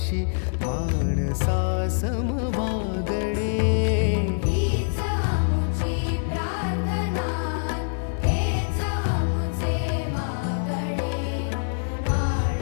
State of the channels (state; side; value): silent; right; digital silence